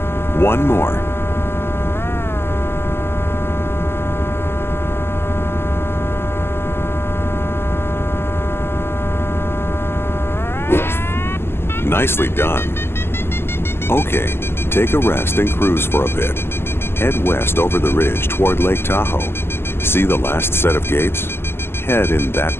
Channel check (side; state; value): right; late; 0.12 ms